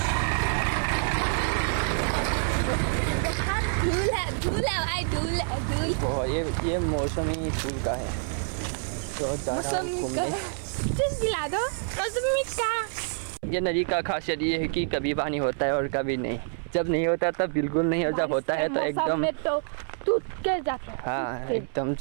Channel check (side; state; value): left; silent; 60 dB below the other